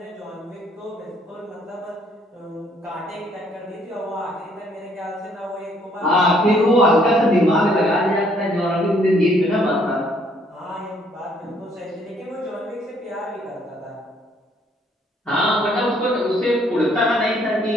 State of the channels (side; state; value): both; normal; correlation 0.65